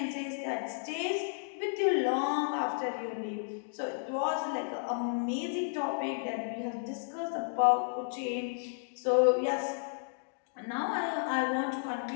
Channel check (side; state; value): right; silent; digital silence